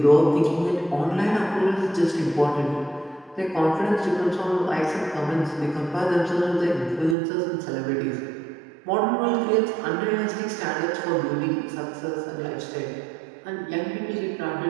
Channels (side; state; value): left; drops out; at 7.2 s